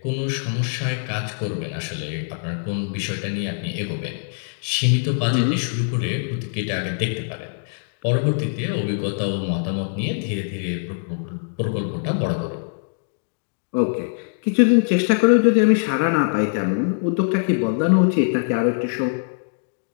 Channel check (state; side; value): silent; right; digital silence